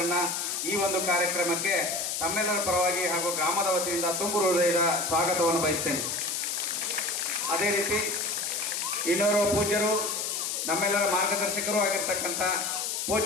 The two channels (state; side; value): noise; left; hiss, 2 dB below the sound